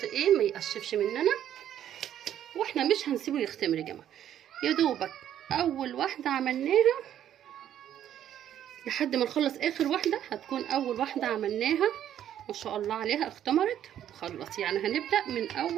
ايه ما يقشفش مننا. واحنا مش هنسيبه يختمر يا جماعه، يا دوبك اول واحده عملناها لحد ما نخلص اخر واحده هتكون اول واحده عملناها ما شاء الله عليها اختمرت وخلص. يعني هنبدا من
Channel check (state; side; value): quieter; left; 10.7 dB